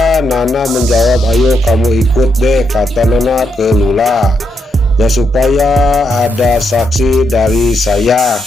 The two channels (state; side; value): normal; both; correlation 0.80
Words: Nana menjawab, ayo kamu ikut deh, kata Nana ke Lula, ya supaya ada saksi dari saya,